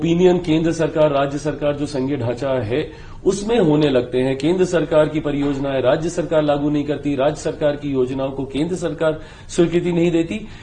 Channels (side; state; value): both; identical; correlation 1.00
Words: केंद्र सरकार, राज्य सरकार जो संघीय ढांचा है उसमें होने लगते हैं। केंद्र सरकार की परियोजनाएं राज्य सरकार लागू नहीं करती, राज्य सरकार की योजनाओं को केंद्र सरकार स्वीकृति नहीं देती।